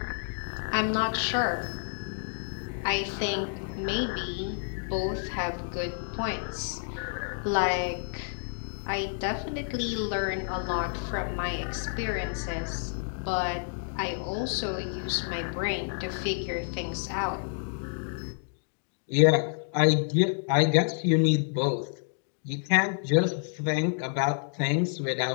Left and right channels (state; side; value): silent; right; digital silence